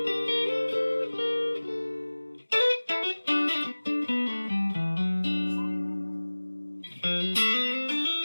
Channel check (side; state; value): both; inverted; correlation -1.00